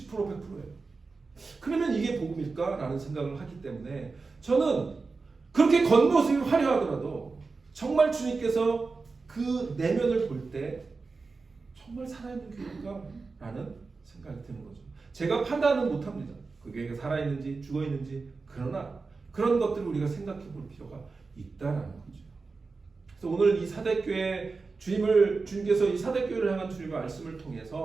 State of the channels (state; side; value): quieter; left; 4.2 dB